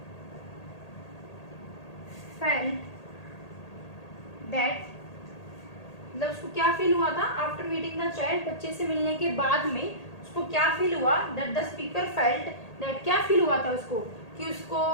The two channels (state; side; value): late; right; 1.8 ms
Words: felt that, मतलब उसको क्या फील हुआ था आफ्टर मीटिंग द चाइल्ड, बच्चे से मिलने के बाद में उसको क्या फील हुआ, that the speaker felt that, क्या फील हुआ था उसको कि उसको